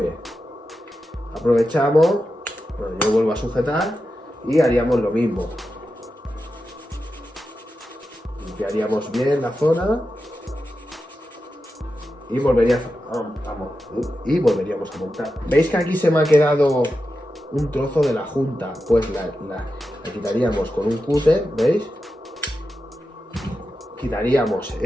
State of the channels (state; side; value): normal; both; correlation 0.90